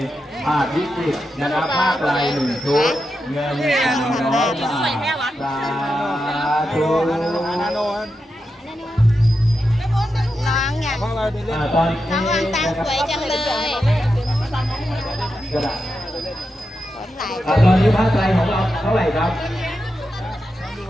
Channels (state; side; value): normal; both; correlation 0.88